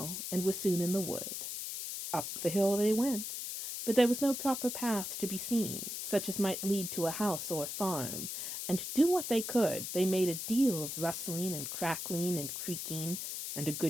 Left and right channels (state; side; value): noise; left; hiss, 5 dB below the sound